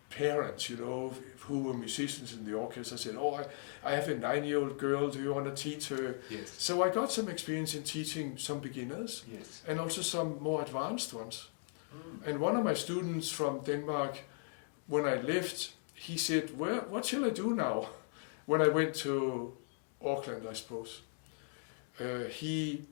parents, you know, who were musicians in the orchestra, said, oh, I have a 9-year-old girl, do you want to teach her? Yes. So I got some experience in teaching some beginners and also some more advanced ones. And one of my students from Denmark, when I left, he said, what shall I do now? When I went to Auckland, I suppose.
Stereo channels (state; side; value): silent; right; 53 dB below the other